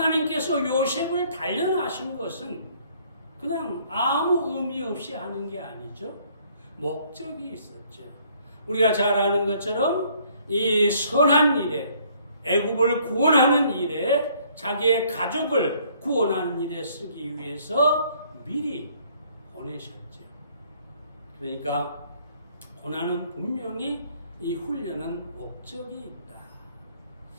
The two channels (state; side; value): inverted; both; correlation -0.62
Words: 요셉을 단련하신 것은 그냥 아무 의미 없이 하는 게 아니죠. 목적이 있었죠. 우리가 잘 아는 것처럼 이 선한 일에, 애굽을 구원하는 일에, 자기의 가족을 구원하는 일에 쓰기 위해서 미리 보내셨죠. 그러니까 고난은 분명히 이 훈련은 목적이 있다.